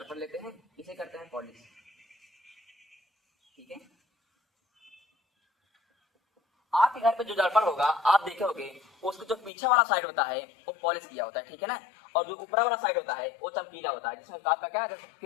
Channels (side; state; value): right; drops out; at 9.5 s